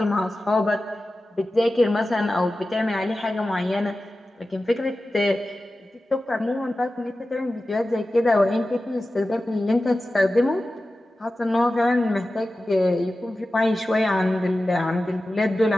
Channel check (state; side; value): normal; both; correlation 0.95